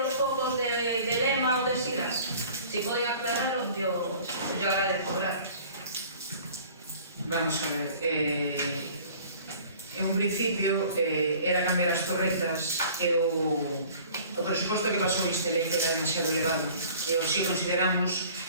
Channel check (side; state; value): both; inverted; correlation -0.49